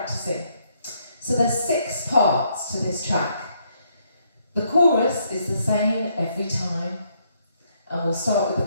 So there's 6 parts to this track. The chorus is the same every time, and we'll start with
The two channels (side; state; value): both; inverted; correlation -0.72